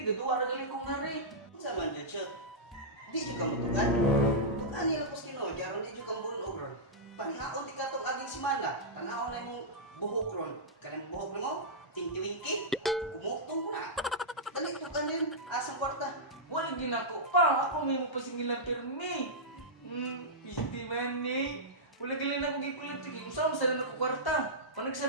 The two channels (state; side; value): normal; both; correlation -0.12